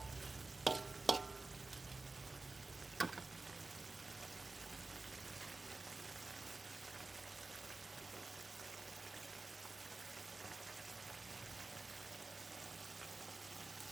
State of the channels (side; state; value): left; quieter; 3.4 dB